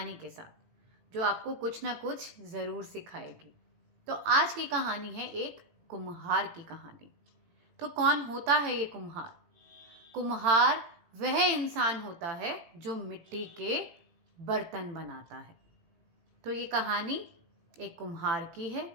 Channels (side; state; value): left; late; 18 ms